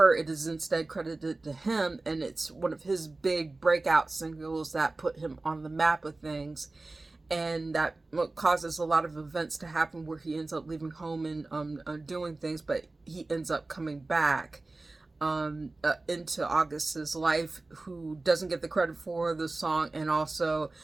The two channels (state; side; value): quieter; left; 3.2 dB